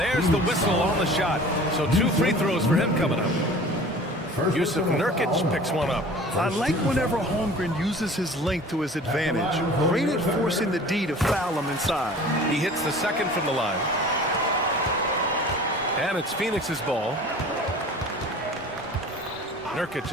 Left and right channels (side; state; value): both; normal; correlation 0.43